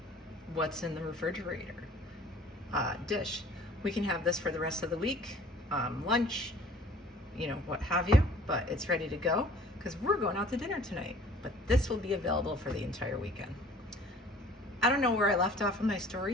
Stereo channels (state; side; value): normal; both; correlation 0.51